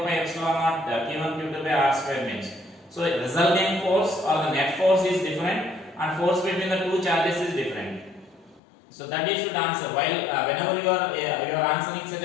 pi epsilon naught Q1 Q2 by r square means. So resultant force or the net force is different, and force between the two charges is different. So that you should answer. While whenever you are answering such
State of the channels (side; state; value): right; drops out; at 8.6 s